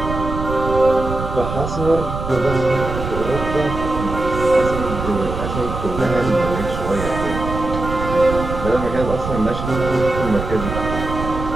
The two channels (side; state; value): right; noise; rumble, 6 dB below the sound